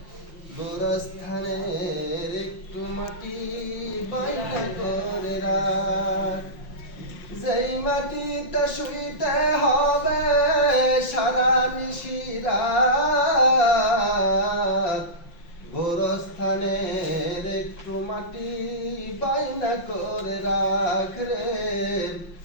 গোরস্থানের একটু মাটি বাইনা করে রাখ। যেই মাটিতে শুইতে হবে সারা নিশিরাত, গোরস্থানের একটু মাটি বাইনা করে রাখ রে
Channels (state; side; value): late; right; 5.8 ms